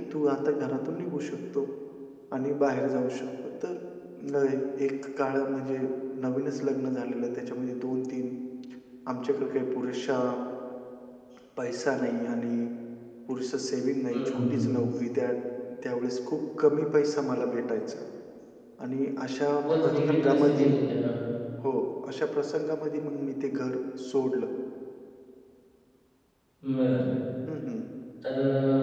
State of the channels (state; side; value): identical; both; correlation 1.00